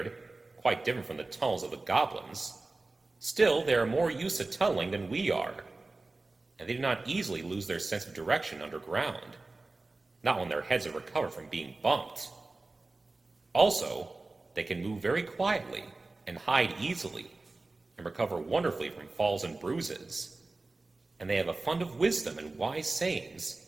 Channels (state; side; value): quieter; left; 3.3 dB